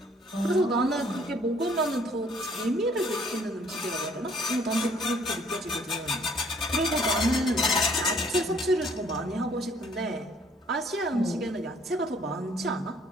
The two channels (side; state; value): both; normal; correlation 0.61